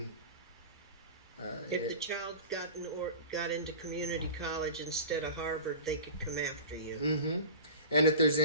if the child got into community college instead of Harvard, they could come after you. Mm-hmm. And if there's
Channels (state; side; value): inverted; both; correlation -0.35